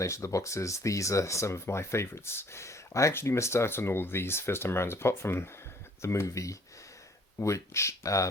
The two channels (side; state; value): both; normal; correlation 0.58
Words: of the boxes, these are some of my favourites. I actually missed out on all of these first time around, apart from the movie, which